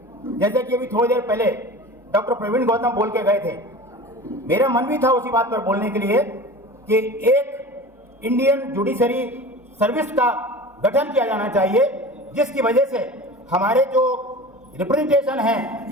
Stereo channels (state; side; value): normal; both; correlation 0.36